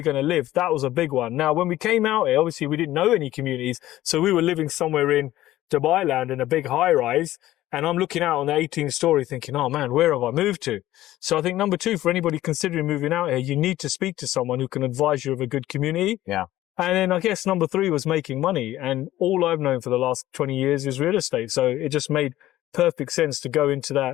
going to live? That was a big one. Now, when we came out here, obviously we didn't know any communities. So we were living somewhere in Dubai land in a big high rise. And I'm looking out on the 18th story thinking, oh man, where have I moved to? So I think number two, for anybody considering moving out here, you need to speak to someone who can advise you of a good community. Yeah. And then I guess number three was making money. And all I've known for the last 20 years is real estate. So it just made perfect sense to go into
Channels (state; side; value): quieter; right; 14.8 dB